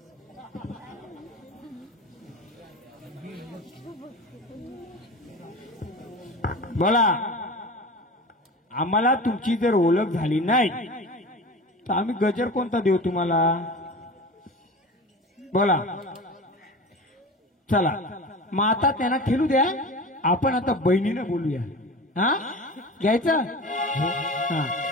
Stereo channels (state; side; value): normal; both; correlation 0.33